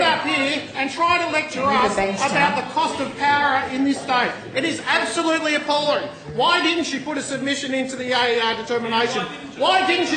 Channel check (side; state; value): both; identical; correlation 1.00